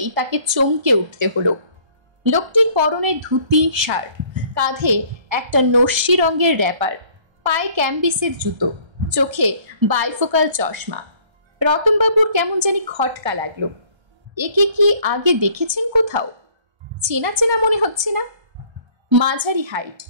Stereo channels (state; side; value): late; left; 1.3 ms